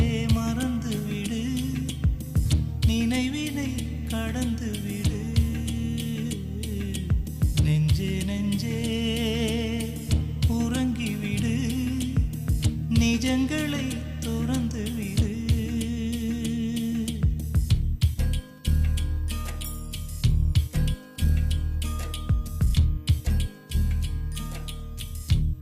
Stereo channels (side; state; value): both; identical; correlation 1.00